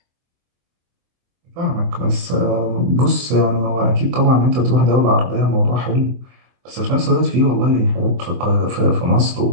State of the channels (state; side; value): late; left; 24 ms